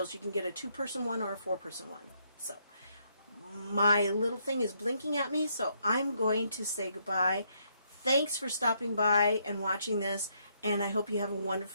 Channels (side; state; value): both; inverted; correlation -0.74